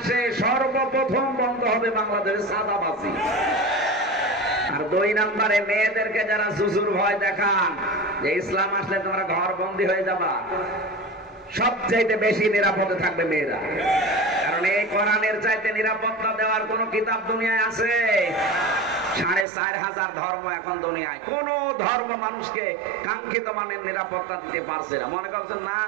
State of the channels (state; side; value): drops out; left; at 19.5 s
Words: সর্বপ্রথম বন্ধ হবে বাংলাদেশের চাঁদাবাজি। আর 2 নম্বরে মেয়েদেরকে যারা জুজুর ভয় দেখান যে ইসলাম আসলে তোমরা ঘর বন্দী হয়ে যাবা, সবচাইতে বেশি নিরাপদে থাকবে মেয়েরা। কারণ এই কোরআনের চাইতে নিরাপত্তা দেওয়ার কোন কিতাব দুনিয়ায় আছে? 4500 ধর্ম এখন দুনিয়ায়, কোন ধর্ম মানুষকে কাঙ্ক্ষিত মানের নিরাপত্তা দিতে পারছে না। মনে করছেন না